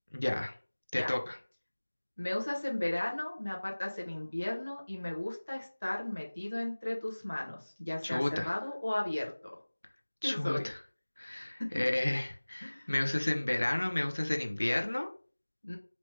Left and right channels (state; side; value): inverted; both; correlation -1.00